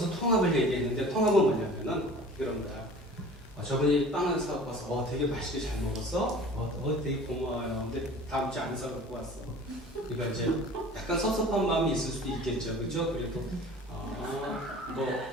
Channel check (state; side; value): normal; both; correlation 0.43